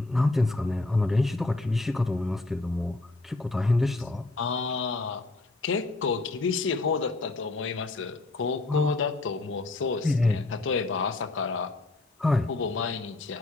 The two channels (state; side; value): quieter; right; 3.1 dB